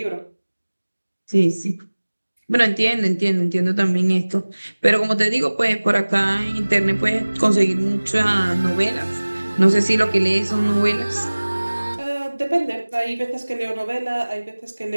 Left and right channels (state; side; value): inverted; both; correlation -1.00